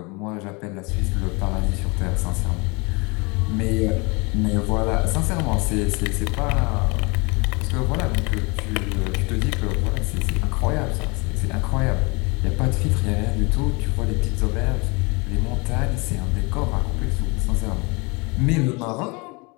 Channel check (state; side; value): quieter; right; 28.3 dB